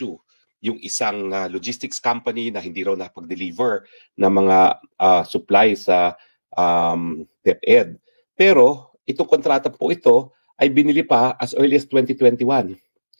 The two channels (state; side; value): inverted; both; correlation -1.00